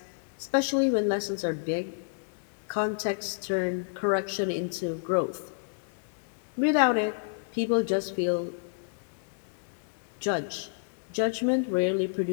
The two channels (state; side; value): silent; right; digital silence